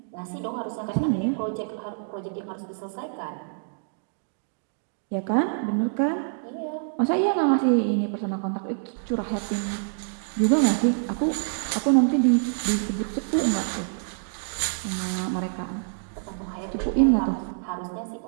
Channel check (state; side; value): silent; left; digital silence